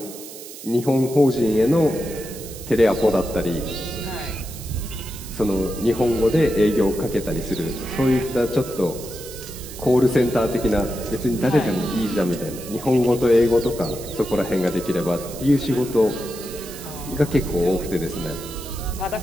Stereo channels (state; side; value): noise; right; hiss, 14 dB below the sound